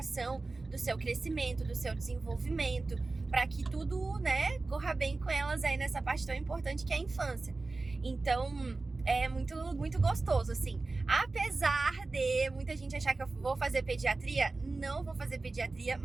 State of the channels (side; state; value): left; quieter; 3.5 dB